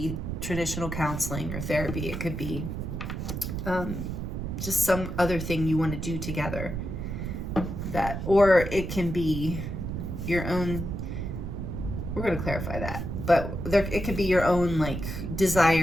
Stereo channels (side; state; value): right; noise; rumble, 5 dB below the sound